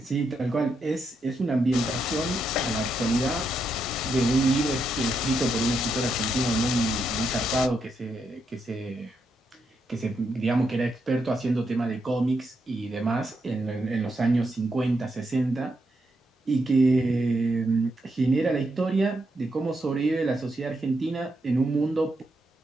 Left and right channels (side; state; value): both; normal; correlation 0.81